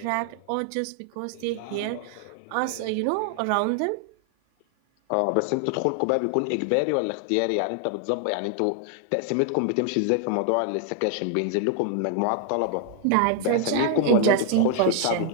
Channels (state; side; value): different; both; correlation 0.00